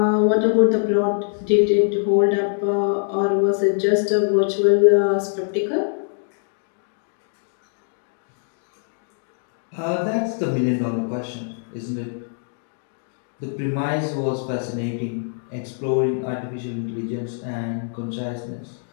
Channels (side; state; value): right; silent; digital silence